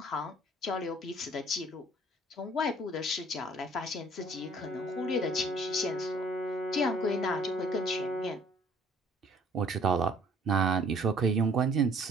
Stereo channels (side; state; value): both; normal; correlation 0.56